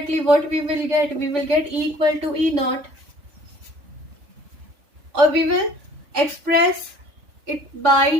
what we will get? We will get E equal to E naught. Or we will express it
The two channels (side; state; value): left; late; 3.4 ms